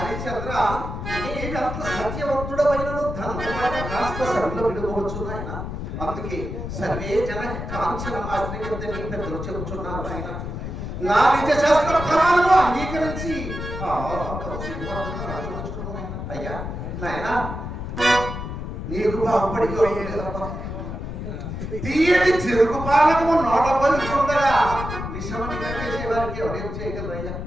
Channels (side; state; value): left; noise; rumble, 6 dB below the sound